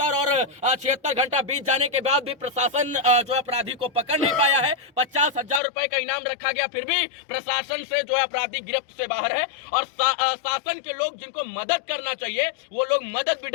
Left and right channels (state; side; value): drops out; right; at 5.6 s